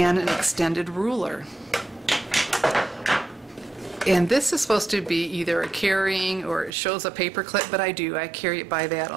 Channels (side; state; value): left; drops out; at 6.8 s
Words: an extended ruler. And this is supposed to be either a carrying or it shows a paper clip, but I carry it by that